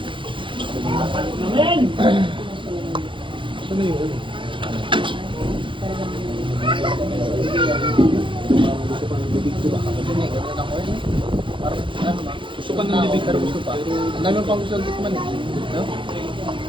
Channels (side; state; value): left; late; 0.24 ms